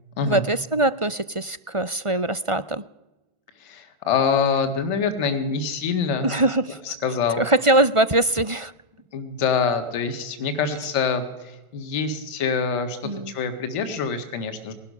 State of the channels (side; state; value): left; late; 1.4 ms